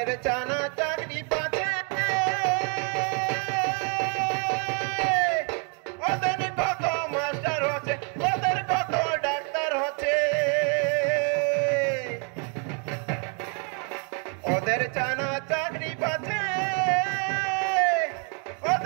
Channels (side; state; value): left; quieter; 39.0 dB